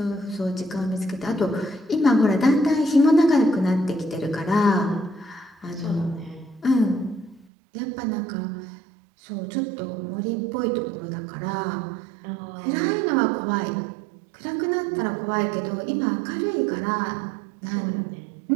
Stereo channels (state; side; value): drops out; left; at 7.5 s